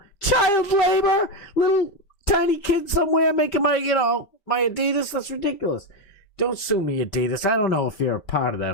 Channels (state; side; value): late; right; 5.1 ms